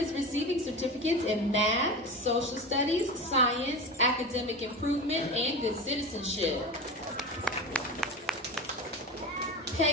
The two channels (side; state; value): both; normal; correlation 0.26